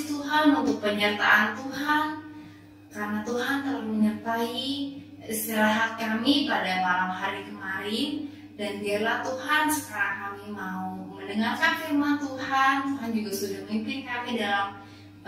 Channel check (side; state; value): both; identical; correlation 1.00